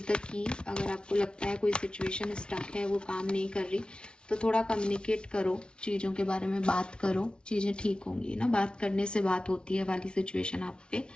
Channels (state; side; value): late; right; 0.056 ms